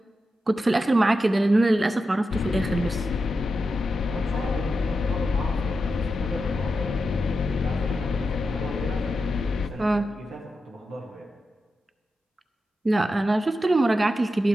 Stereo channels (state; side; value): normal; both; correlation 0.89